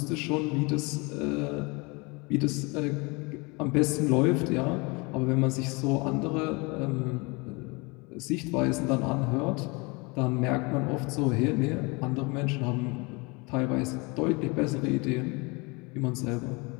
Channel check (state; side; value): quieter; right; 27.8 dB